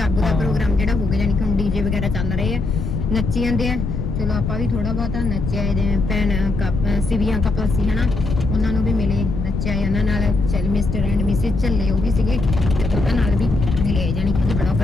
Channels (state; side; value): noise; left; rumble, 3 dB below the sound